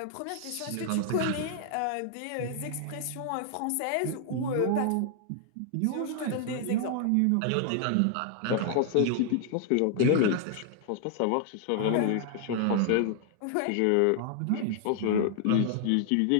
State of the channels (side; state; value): both; different; correlation 0.00